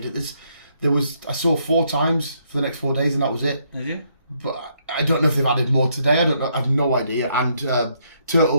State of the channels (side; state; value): both; inverted; correlation -0.73